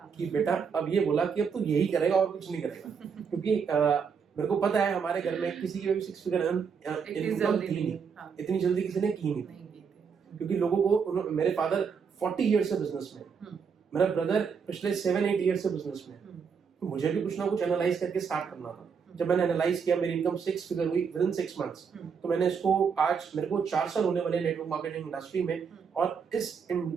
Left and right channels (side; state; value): left; quieter; 6.3 dB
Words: कि बेटा अब ये बोला कि अब तू यही करेगा और कुछ नहीं करेगा। क्योंकि मेरे को पता है हमारे घर में किसी की भी 6 फिगर इनकम थी नहीं, इतनी जल्दी किसी ने की नहीं। क्योंकि लोगों को, मेरे फादर 40 ईयर से बिजनेस में, मेरा ब्रदर पिछले 7-8 ईयर से बिजनेस में, तो मुझे भी कुछ ना कुछ एनालाइज करके स्टार्ट करना था। जब मैंने एनालाइज किया, मेरी इनकम 6 फिगर हुई विद इन 6 मंथ्स। तो मैंने इसको, आज मेरे को 4 साल होने वाले नेटवर्क मार्केटिंग इंडस्ट्री में, और इस